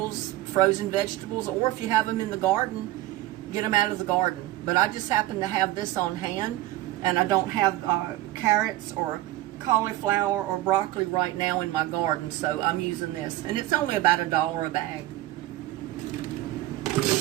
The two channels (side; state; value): left; quieter; 16.2 dB